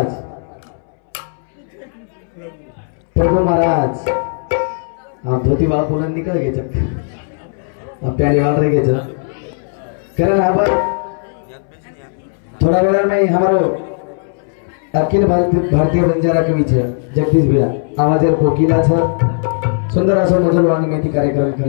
प्रभु महाराज, हाँ धोती बाल पुलन निकल गए जब प्यारे वाल रह गए कारण अब थोड़ा वेला में हमारो अखिल भारतीय बंजारा कवि छे जगदीश भैया आवाजेर कोकिला छे सुंदर असो मधुर वाणी मेथी कार्यक्रम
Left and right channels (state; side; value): silent; right; 65 dB below the other